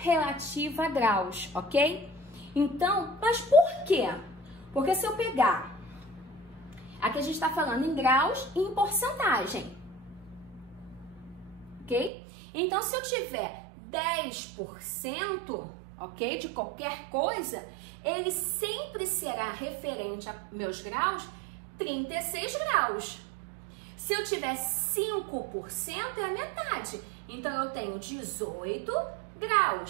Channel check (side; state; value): left; drops out; at 12.1 s